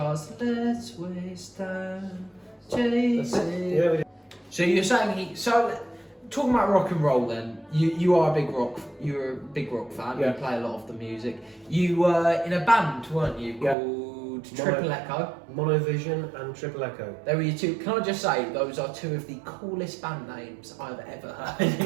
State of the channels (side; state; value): left; drops out; at 13.8 s